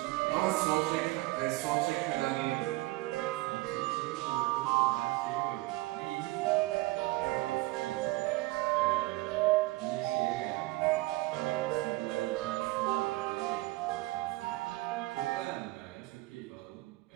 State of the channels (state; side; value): quieter; left; 20.6 dB